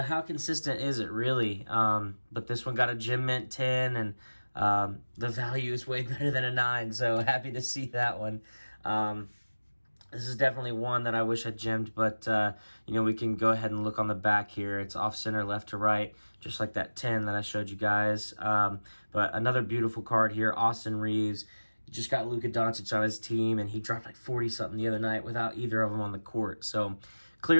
consistent is it really? But this one got a Gem Mint 10, and the value is way better than a 9, so happy to see that one. This is definitely one that I wish I gemmed, but, we can go ahead and look on the back here. It's off-center, left to right, just like that 10 that I showed you guys. But another beautiful card here, Austin Reeves. He just got Luka Doncic on his team, and he dropped like 40-something the other night without either of them on the court. So,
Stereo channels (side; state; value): both; inverted; correlation -1.00